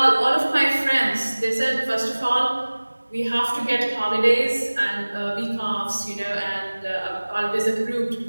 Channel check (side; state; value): both; inverted; correlation -1.00